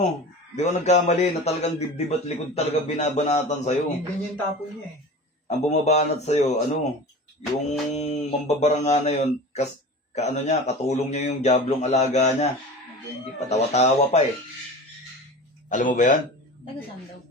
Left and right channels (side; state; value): both; normal; correlation 0.34